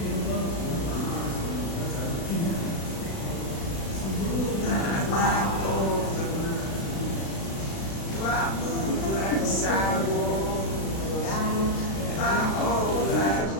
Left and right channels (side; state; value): right; late; 36 ms